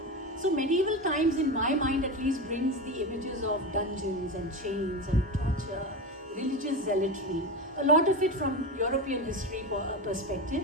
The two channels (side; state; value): both; normal; correlation 0.21